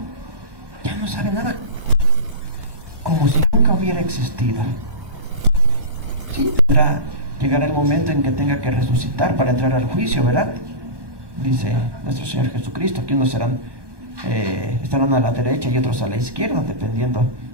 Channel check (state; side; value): late; left; 1.2 ms